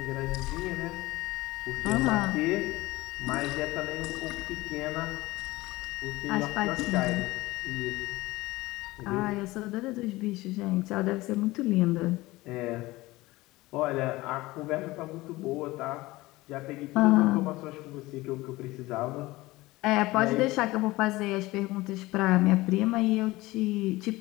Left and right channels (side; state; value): right; quieter; 19.7 dB